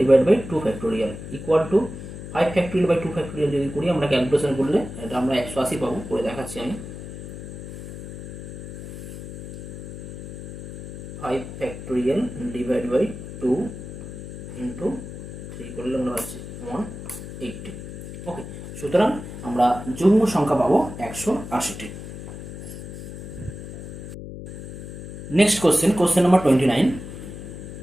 divide by 2 factorial equal to 5 factorial by 2 factorial যদি করি আমরা ক্যালকুলেশন করলে এটা আমরা 180 পাবো। করে দেখাচ্ছি আমি। 5 ফ্যাক্টোরিয়াল ডিভাইড বাই 2 ইন্টু 3 করলে আমরা পাচ্ছি 180। ওকে, সুতরাং আমরা যুগ্ম সংখ্যা পাবো 180টি। Next question, question number 29।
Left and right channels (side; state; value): left; noise; hum, 10 dB below the sound